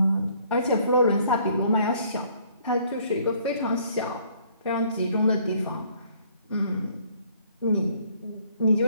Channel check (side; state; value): both; inverted; correlation -0.62